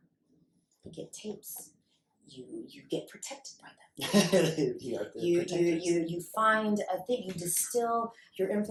You get tapes. You get protected by them. You find a thing. You distill your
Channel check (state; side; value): identical; both; correlation 1.00